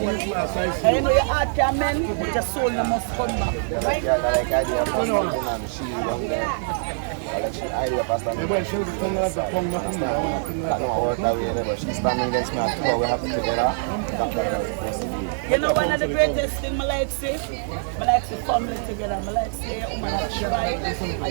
And you know your heart can mend, but your soul must come back. You know one of the greatest things I like say family together. I like say your woman a try,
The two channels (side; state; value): left; silent; 63 dB below the other